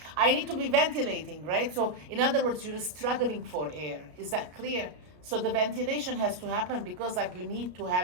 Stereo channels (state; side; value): late; left; 33 ms